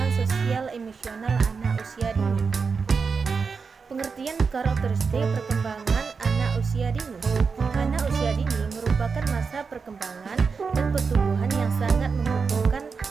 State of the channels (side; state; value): left; quieter; 5.2 dB